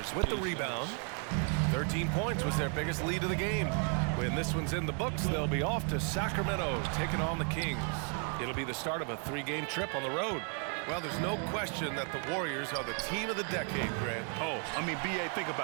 with the rebound. 13 points was their biggest lead of the game. When this one's in the books, they'll be off to Sacramento, taking on the Kings. It'll be the start of a 3-game trip on the road. Well, there's no question that the Warriors are the team of the decade, Grant. Oh, I mean, B.A., think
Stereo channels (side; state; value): left; quieter; 39.2 dB